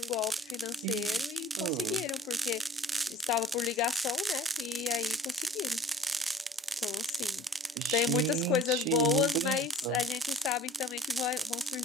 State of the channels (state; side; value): normal; both; correlation 0.47